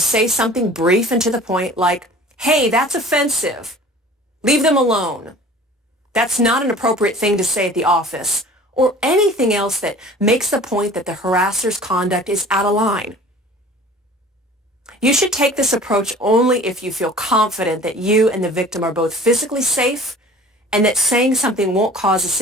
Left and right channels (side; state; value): both; normal; correlation 0.45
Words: something brief and to the point like, "Hey, that's offensive. Leave them alone. That's not an appropriate thing to say at the office," or anything else that makes the point that the harasser's conduct is out of line. You should take this approach only if you feel confident that you and the victim are both physically safe and that saying something won't cause a